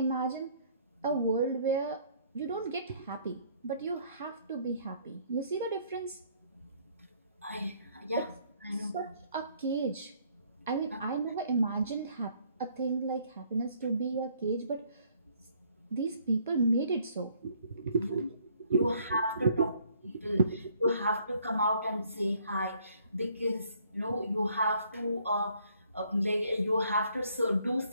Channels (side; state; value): both; inverted; correlation -0.64